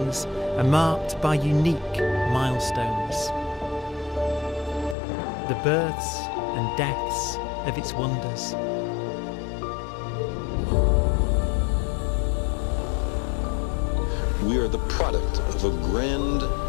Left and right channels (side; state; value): right; drops out; at 5.0 s